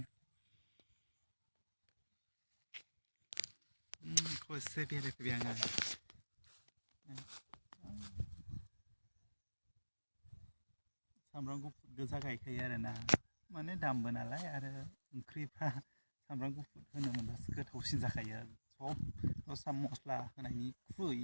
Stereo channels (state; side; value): inverted; both; correlation -1.00